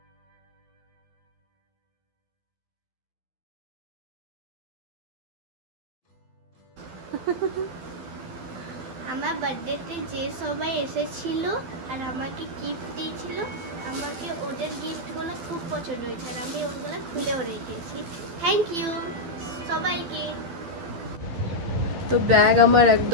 আমার বার্থডেতে যে সবাই এসেছিল আর আমাকে গিফট দিয়েছিল, আমাকে ওদের গিফটগুলো খুব পছন্দ হয়েছে আর আমি ওগুলো খুলেও রেখেছি। থ্যাংক ইউ সবাইকে। তো ব্যাগ আমার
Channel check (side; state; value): left; late; 12 ms